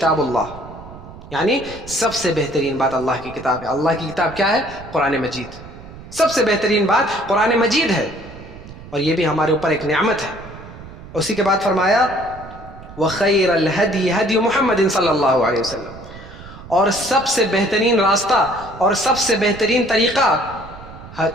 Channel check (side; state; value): right; noise; rumble, 16 dB below the sound